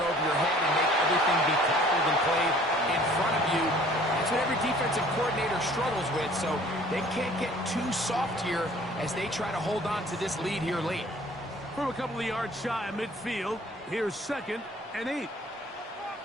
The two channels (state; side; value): normal; both; correlation 0.53